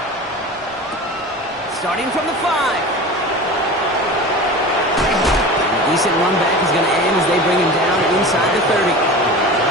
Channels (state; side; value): normal; both; correlation 0.33